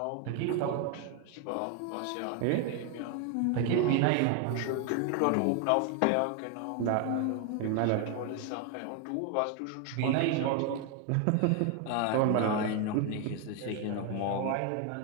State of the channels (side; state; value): both; different; correlation 0.01